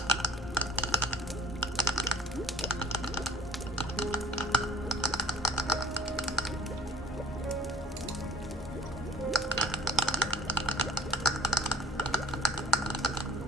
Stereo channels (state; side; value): normal; both; correlation 0.48